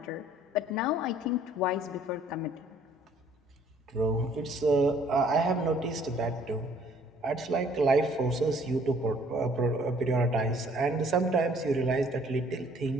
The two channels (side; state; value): both; normal; correlation 0.59